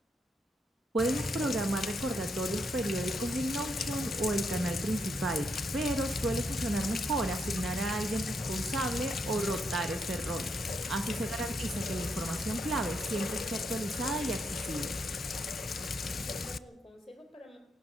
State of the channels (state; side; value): normal; both; correlation 0.78